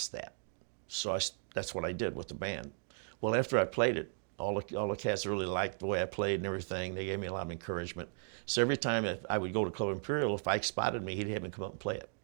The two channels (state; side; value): silent; left; digital silence